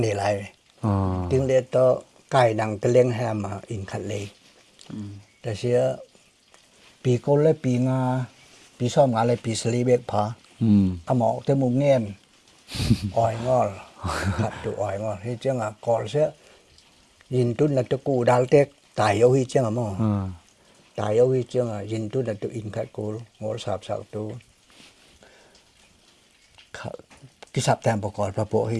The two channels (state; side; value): identical; both; correlation 1.00